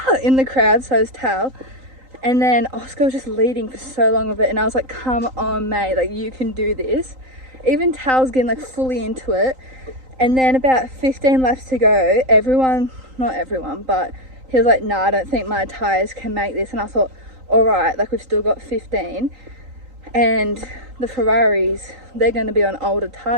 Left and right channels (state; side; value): late; left; 3.9 ms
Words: In the crowd, so is Tal. And then Oscar was just leading for so long of it, and I was like, come on mate, like you can do this. even Tal's getting like fully into it. And then about 15 laps to go, everyone, not everyone, but he was like, nah, I don't think my tyres can make this. And I thought, all right, like we've still got 15. And the Ferraris, they're going to be on older